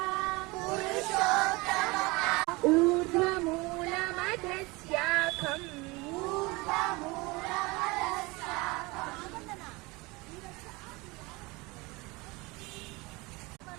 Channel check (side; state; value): left; quieter; 24.3 dB